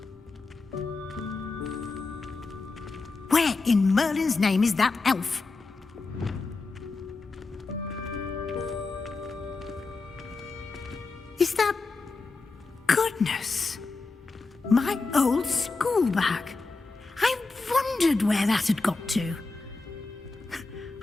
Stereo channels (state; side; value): quieter; right; 3.8 dB